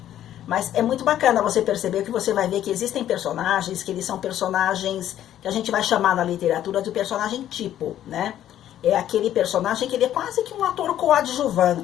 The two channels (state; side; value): quieter; right; 11.7 dB